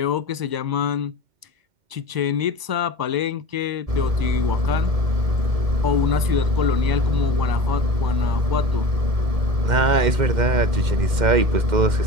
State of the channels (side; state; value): left; late; 2.1 ms